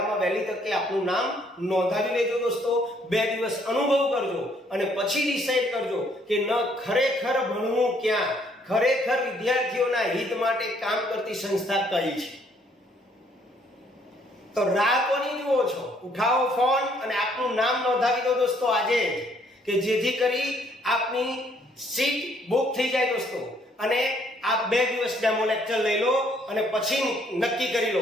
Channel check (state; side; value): normal; both; correlation 0.66